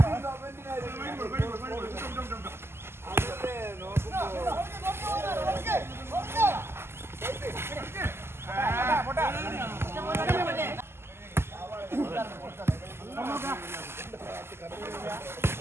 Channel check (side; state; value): left; late; 0.12 ms